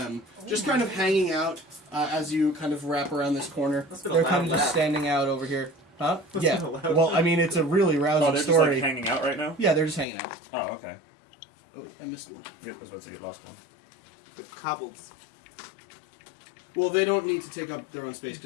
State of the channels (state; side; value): drops out; right; at 10.1 s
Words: just kind of hanging out as you kind of wrap around this corner. That's been a They're loud kind of just laugh. standing out over here. Huh? That's Yeah. been a loud Well, laugh. I mean, it's a really rousing Oh, they're just story. like hanging out right now? Yeah, they're just hanging out. Oh, okay. Oh, wait, I missed one. Yep, I was about to say you lost one. The cobbles. Well, they don't need to take up their own space